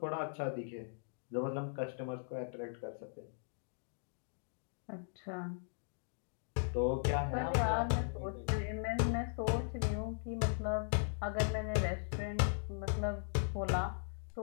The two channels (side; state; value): right; silent; digital silence